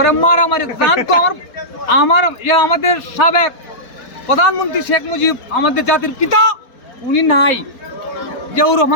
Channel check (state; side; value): late; right; 4.1 ms